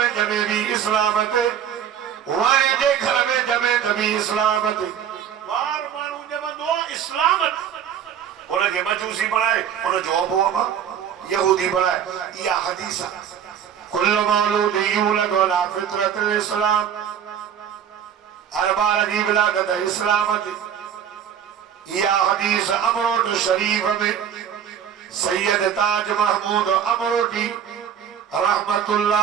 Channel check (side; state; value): left; quieter; 8.9 dB